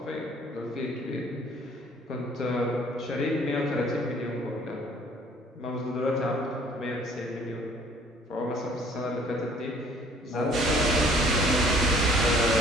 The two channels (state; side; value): normal; both; correlation 0.56